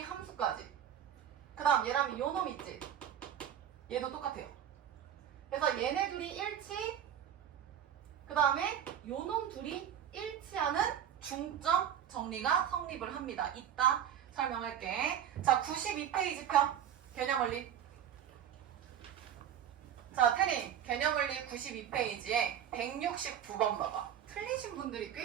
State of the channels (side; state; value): left; quieter; 9.7 dB